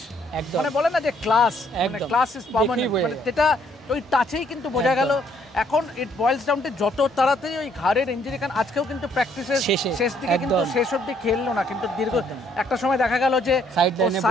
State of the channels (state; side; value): normal; both; correlation 0.67